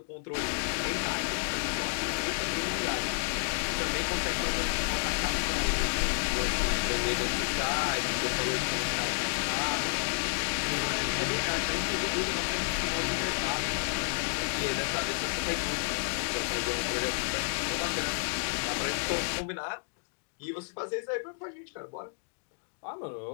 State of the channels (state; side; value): silent; right; digital silence